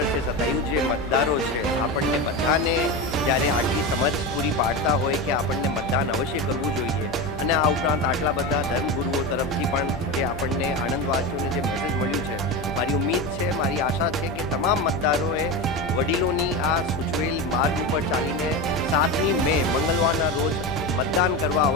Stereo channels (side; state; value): left; noise; hum, 12 dB below the sound